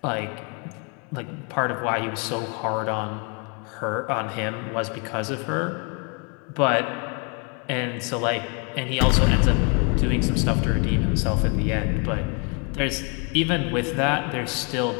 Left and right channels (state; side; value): quieter; right; 35.2 dB